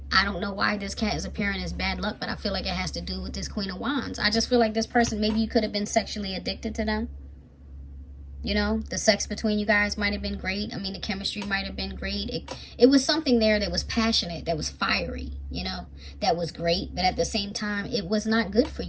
I don't know why this cat is appearing as bad luck, but I feel like it has to do with this Queen of Wands. I just feel like this person, maybe you could have been sexually addicted to them. You know, the sex between you guys might have been great. I mean, the chemistry might have been great. It was something there that was passionate, that was fiery, you know, that was great. But at the same time, it was not good for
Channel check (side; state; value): both; identical; correlation 1.00